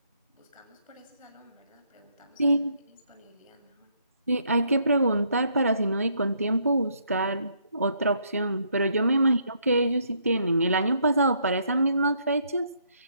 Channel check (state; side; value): inverted; both; correlation -0.71